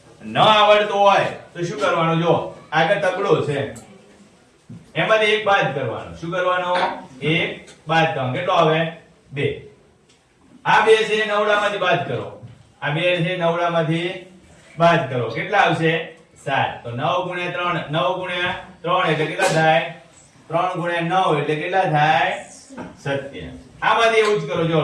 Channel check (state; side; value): identical; both; correlation 1.00